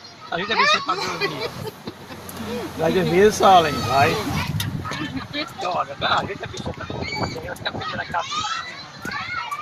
A gente vai ser pra dormir. Vai dormir, Salem, vai. Olha, a gente vai ser pra dormir. Vai ficar pegando a cabeça.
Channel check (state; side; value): identical; both; correlation 1.00